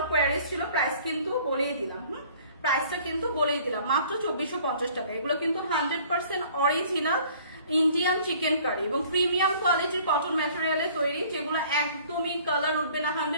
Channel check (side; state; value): both; inverted; correlation -0.53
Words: কোয়ারিজ ছিল, প্রাইস কিন্তু বলিয়ে দিলাম। প্রাইসটা কিন্তু বলেই দিলাম মাত্র 2450 টাকা। এগুলো কিন্তু 100% অরিজিনাল ইন্ডিয়ান চিকেন কারি এবং প্রিমিয়াম কোয়ালিটির কটন ম্যাটেরিয়ালে তৈরি, যেগুলো একদমই কালার উঠবে না,